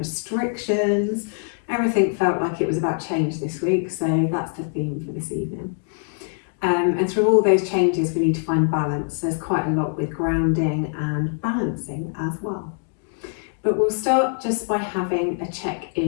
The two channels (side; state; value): right; silent; 58 dB below the other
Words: Everything felt like it was about change this week, so that's the theme for this evening. And through all those changes, we need to find balance. There's quite a lot with grounding and balancing as well. But we'll start just by having a